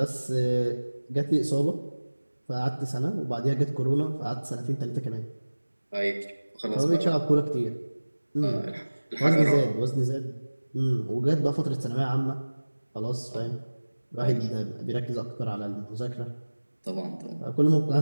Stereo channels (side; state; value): both; inverted; correlation -1.00